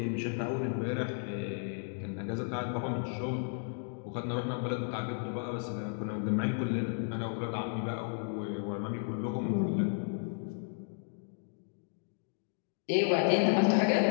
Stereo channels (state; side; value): silent; right; 55 dB below the other